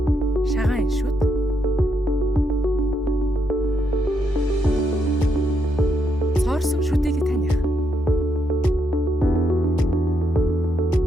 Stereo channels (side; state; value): both; normal; correlation 0.78